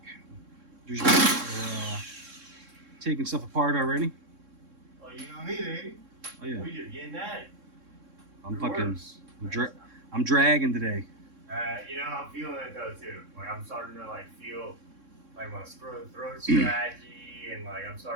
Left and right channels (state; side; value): late; left; 3.6 ms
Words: Usually we're taking stuff apart already. Oh, you know me, baby. Oh yeah. We just getting at it. I'm I'm dragging today. You know, I'm feeling it though too. Like I'm starting to like feel like my throat scratchy and like I'm